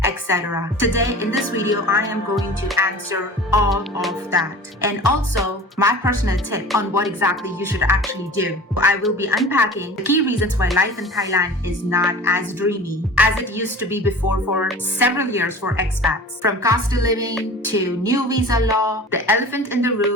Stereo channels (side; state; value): both; normal; correlation 0.39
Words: etc. Today in this video, I am going to answer all of that. And also my personal tip on what exactly you should actually do. I will be unpacking the key reasons why life in Thailand is not as dreamy as it used to be before for several years for expats. From cost of living to new visa law, the elephant in the